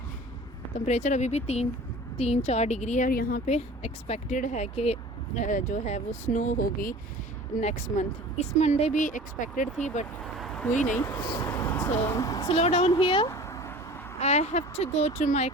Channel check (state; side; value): normal; both; correlation 0.42